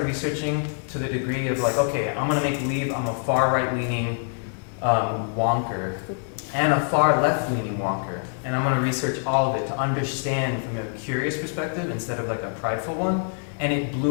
researching to the degree of like, okay, I'm gonna make believe I'm a far right leaning wonker and a far left leaning wonker. And I'm gonna research all of it to understand from a curious perspective instead of like a prideful one. And it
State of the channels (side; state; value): right; silent; 62 dB below the other